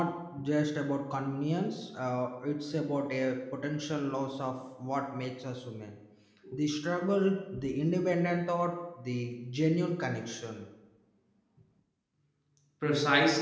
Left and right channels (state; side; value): identical; both; correlation 1.00